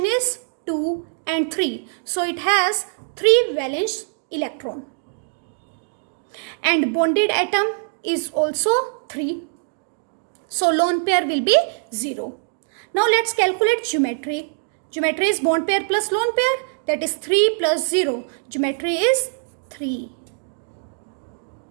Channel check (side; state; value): left; silent; digital silence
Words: is 2 and 3. So, it has 3 valence electron. And bonded atom is also 3. So, lone pair will be 0. Now let's calculate geometry. Geometry is bond pair plus lone pair, that is 3 plus 0. Geometry is 3.